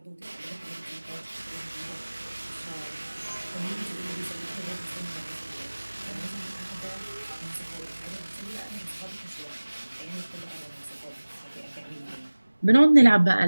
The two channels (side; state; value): both; inverted; correlation -1.00